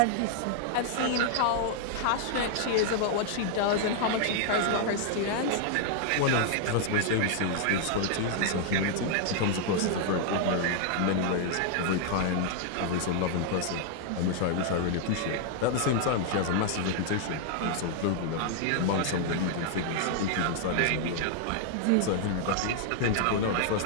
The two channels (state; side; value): different; both; correlation 0.00